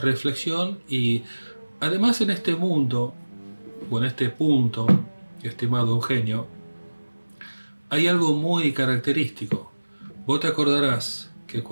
y además en este mundo, o en este punto, estimado Eugenio, hay algo muy característico. Vos te acordarás que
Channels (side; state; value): both; inverted; correlation -1.00